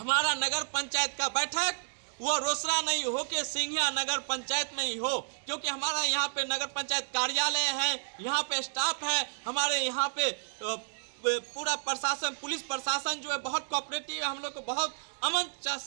नगर पंचायत का बैठक वो रोसड़ा नहीं हो के सिंघिया नगर पंचायत में ही हो, क्योंकि हमारा यहाँ पे नगर पंचायत कार्यालय है, यहाँ पे स्टाफ है, हमारे यहाँ पे पूरा प्रशासन, पुलिस प्रशासन जो है बहुत कोऑपरेटिव है, हम लोग को बहुत अमन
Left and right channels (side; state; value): left; silent; digital silence